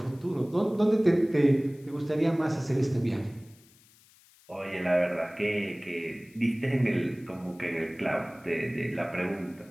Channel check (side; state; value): left; noise; hiss, 28 dB below the sound